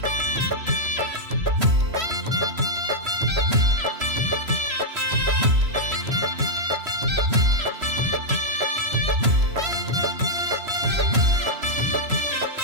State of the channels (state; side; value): late; left; 3.0 ms